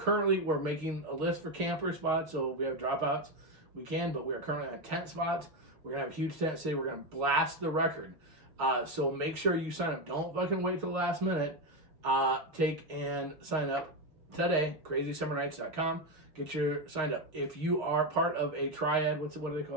making a list for camper spots, so if we have dropouts, we can. But we are currently on tent spots. We're gonna have a huge tent city. We're gonna blast the record. So make sure you sign up. Don't fucking wait till the last minute. Take and sign up today. crazysummernights.com. Get your signed up. If you are part of a triad, what do they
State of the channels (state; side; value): late; left; 6.4 ms